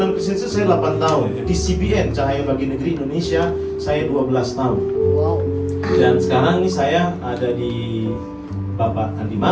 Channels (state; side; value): identical; both; correlation 1.00